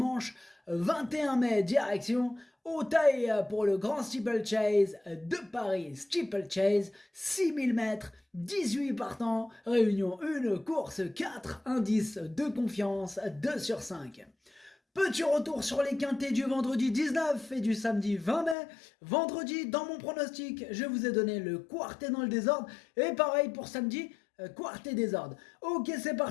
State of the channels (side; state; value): right; drops out; at 18.6 s